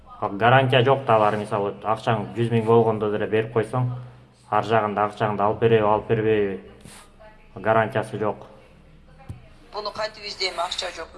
Гарантия жок да, бар мисалы акчаң 100 миң болгондо деле берип койсоң, ар жагында акчаңды алып береби, алып бербейби, гарантиясы жок. Буну кантип издейм, акча жок.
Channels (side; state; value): both; identical; correlation 1.00